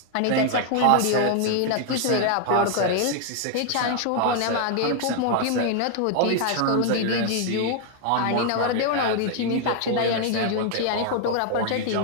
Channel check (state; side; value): different; both; correlation 0.00